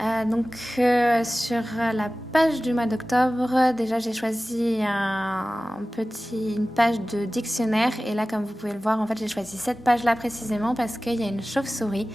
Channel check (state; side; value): normal; both; correlation 0.97